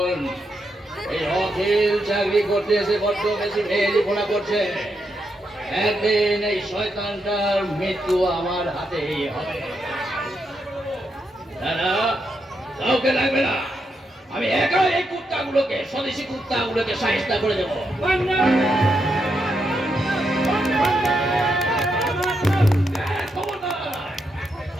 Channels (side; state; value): both; normal; correlation 0.82